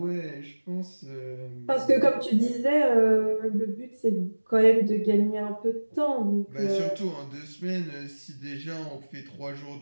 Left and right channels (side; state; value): both; inverted; correlation -1.00